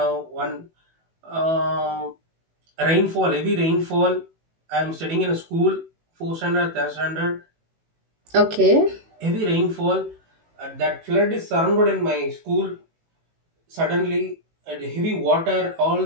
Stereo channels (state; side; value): late; left; 18 ms